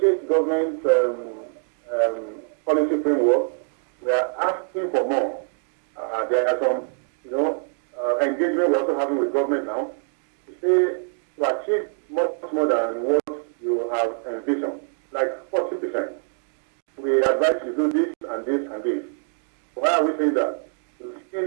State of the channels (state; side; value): silent; left; 59 dB below the other